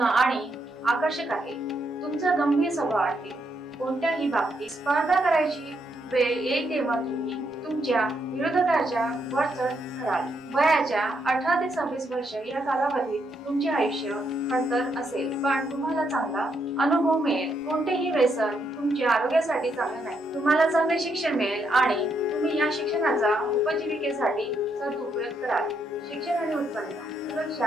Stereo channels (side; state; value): both; normal; correlation 0.77